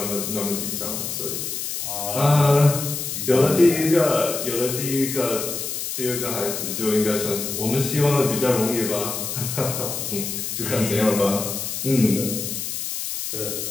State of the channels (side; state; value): left; noise; hiss, 4 dB below the sound